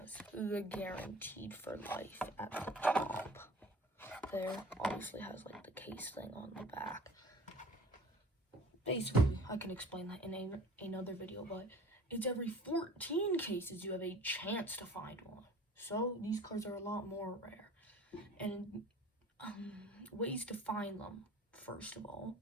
the guaranteed for life at the top. There obviously has like the case thing on the back. Basically, I can explain that in another video, but it's every 14 cases you have a chance to find one. So these cards are a lot more rare. And ways to find them, first of all,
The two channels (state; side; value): normal; both; correlation 0.45